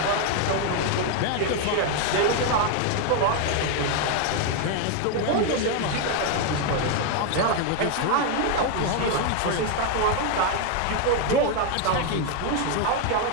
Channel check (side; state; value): both; different; correlation 0.01